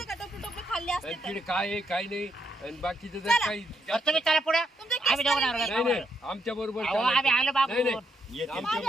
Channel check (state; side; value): normal; both; correlation 0.78